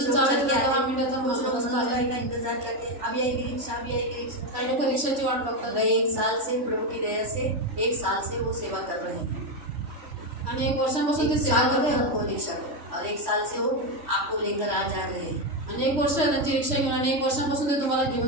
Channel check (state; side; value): late; left; 3.1 ms